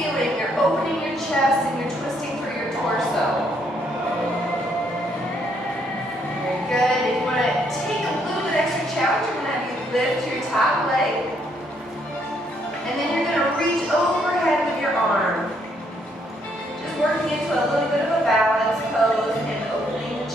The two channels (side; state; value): both; normal; correlation 0.71